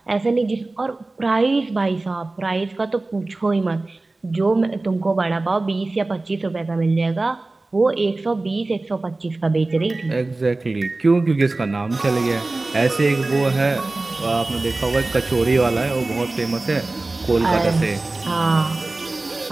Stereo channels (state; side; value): quieter; left; 3.1 dB